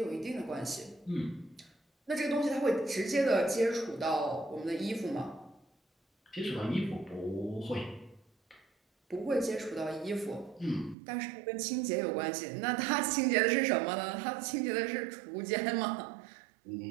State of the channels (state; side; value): drops out; left; at 11.0 s